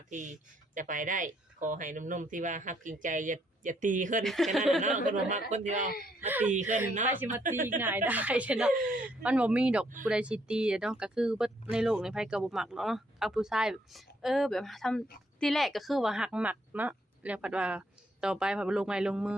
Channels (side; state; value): both; normal; correlation 0.71